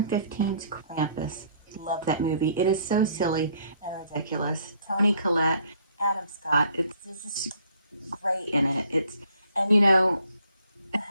Krampus. Love that movie. It is so silly and ridiculous. Toni Collette, Adam Scott. It's just great in it.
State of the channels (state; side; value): inverted; both; correlation -0.62